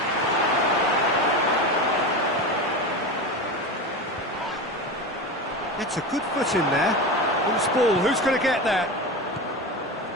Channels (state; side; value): normal; both; correlation 0.24